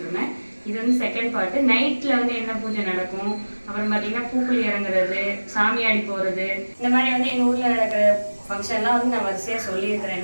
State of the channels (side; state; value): both; inverted; correlation -1.00